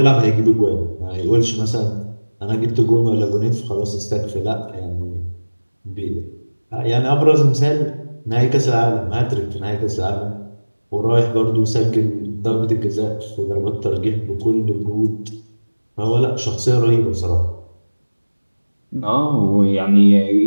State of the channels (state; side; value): inverted; both; correlation -1.00